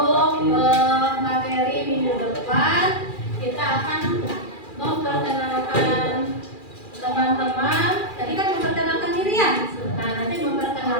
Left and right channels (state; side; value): late; right; 2.4 ms